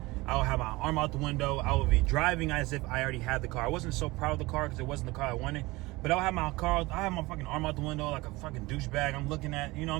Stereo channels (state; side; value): quieter; left; 21.6 dB